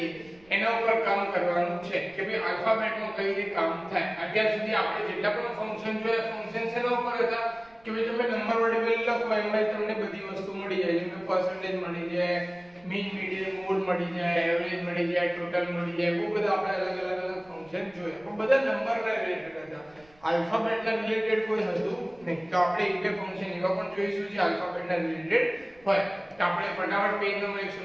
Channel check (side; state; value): right; noise; rumble, 29 dB below the sound